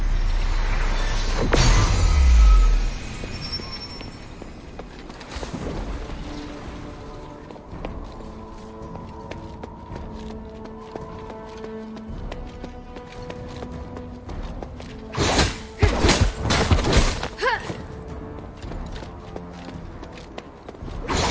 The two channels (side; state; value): both; identical; correlation 1.00